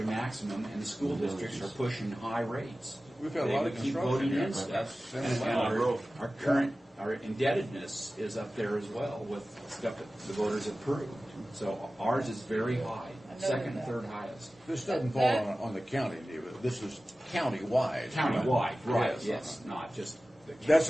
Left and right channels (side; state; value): both; normal; correlation 0.96